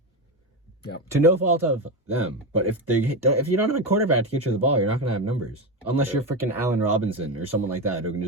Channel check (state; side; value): normal; both; correlation 0.15